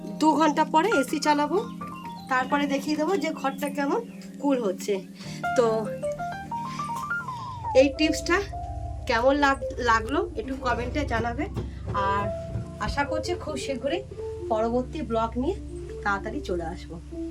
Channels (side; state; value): both; identical; correlation 1.00